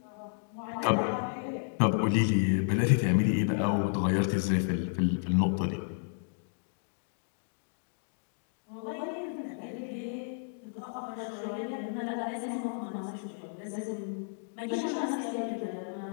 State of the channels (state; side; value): silent; right; digital silence